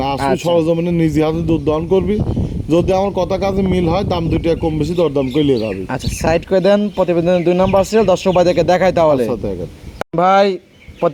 না, আসলে আচ্ছা। সরজমিনে নিজে হাতে দুধ দহন করবি। যদি আমার কথা কাজে মিল হয় দাম 2 টাকা কম বেশি দরদাম করে নিয়ে যাবে। আচ্ছা সাইড করে দেন, প্রতিবেদনের 2 নাম্বার সিরিয়াল দর্শক ভাইদেরকে দেখাই তাহলে। আচ্ছা, দেখেন। ভাই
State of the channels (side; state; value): both; identical; correlation 1.00